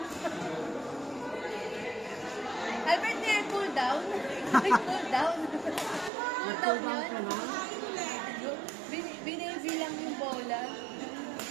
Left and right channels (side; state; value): left; drops out; at 6.1 s